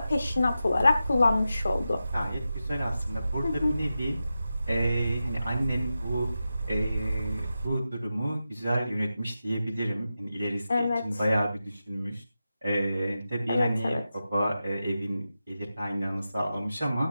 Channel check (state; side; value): inverted; both; correlation -0.91